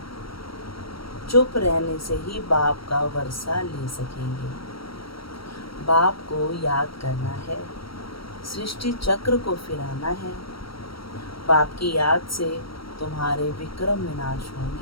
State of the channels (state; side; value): late; right; 0.75 ms